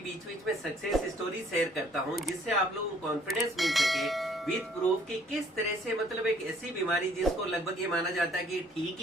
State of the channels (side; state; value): both; normal; correlation 0.60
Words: बीच में सक्सेस स्टोरी शेयर करता हूं, जिससे आप लोगों को कॉन्फिडेंस मिल सके विद प्रूफ कि किस तरह से एक ऐसी बीमारी जिसको लगभग ये माना जाता है कि ठीक